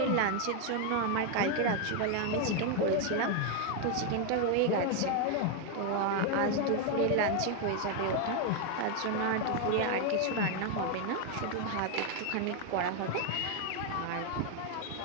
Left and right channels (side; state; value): both; different; correlation 0.01